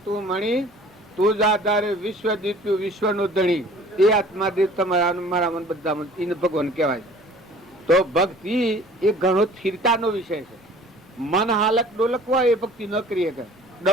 તું મણી તું જ આધારે વિશ્વ દીપ્યું વિશ્વનો ધણી। એ આત્મા દેવ તમારા મારા બધામાં એને ભગવાન કહેવાય। તો ભક્તિ એ ઘણો સ્થિરતાનો વિષય છે। મન હાલક ડોલક હોય એ ભક્તિ ન કરી શકે,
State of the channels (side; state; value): both; normal; correlation 0.49